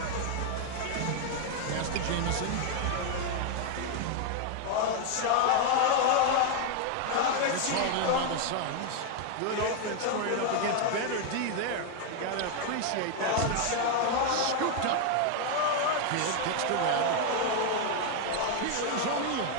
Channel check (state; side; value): different; both; correlation 0.00